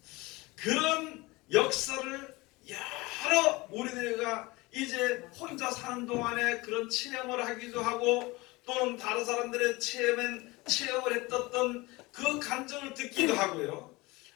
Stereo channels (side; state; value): right; quieter; 22.7 dB